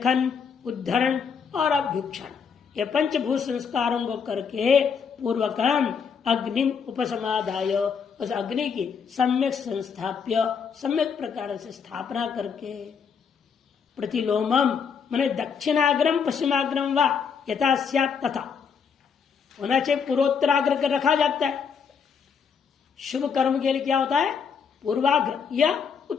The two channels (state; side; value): quieter; right; 6.4 dB